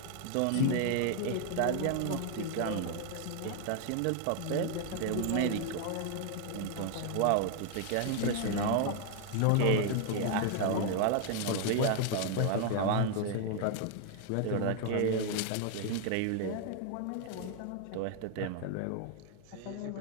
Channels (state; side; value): different; both; correlation 0.00